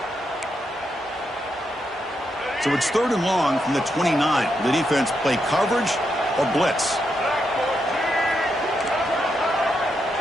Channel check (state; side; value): normal; both; correlation 0.82